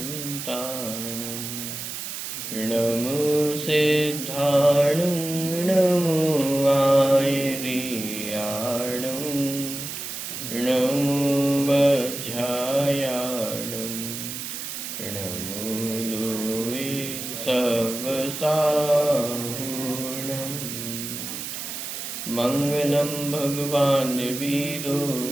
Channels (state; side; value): noise; right; hiss, 7 dB below the sound